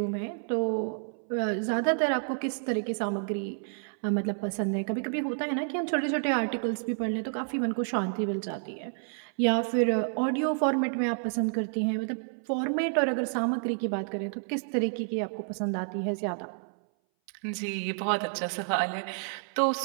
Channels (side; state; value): left; silent; 58 dB below the other